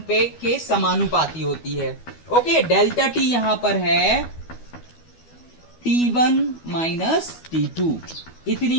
पे के समानुपाती होती है। ओके, डेल्टा टी यहां पर है T1 माइनस T2,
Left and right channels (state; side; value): late; right; 12 ms